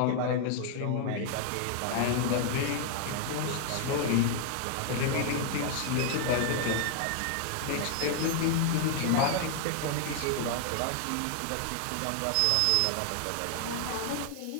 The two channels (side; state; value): both; different; correlation 0.00